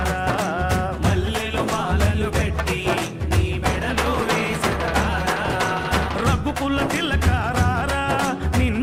మల్లెలు మాలలు కట్టి నీ మెడలో వేసెదరారా రఘుకుల తిలకారారా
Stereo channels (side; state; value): both; identical; correlation 1.00